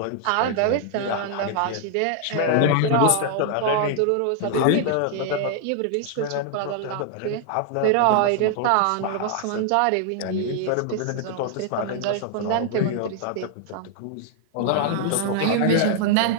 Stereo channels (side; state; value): both; different; correlation 0.00